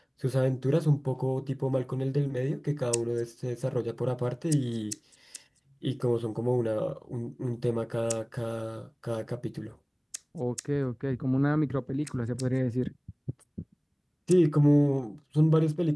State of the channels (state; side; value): identical; both; correlation 1.00